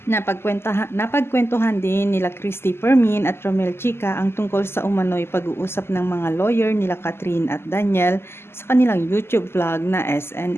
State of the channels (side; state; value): right; late; 0.12 ms